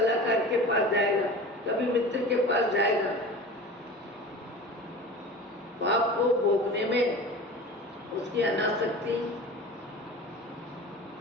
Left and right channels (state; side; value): normal; both; correlation 0.36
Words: के पास जाएगा, कभी मित्र के पास जाएगा। पाप को भोगने में उसकी अनासक्ति,